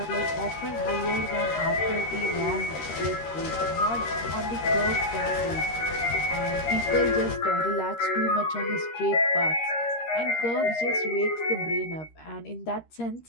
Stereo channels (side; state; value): right; late; 13 ms